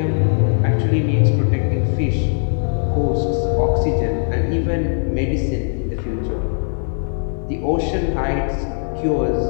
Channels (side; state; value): right; silent; digital silence